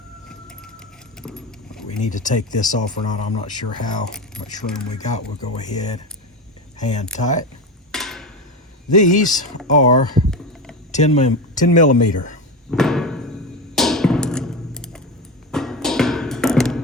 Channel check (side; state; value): both; normal; correlation 0.21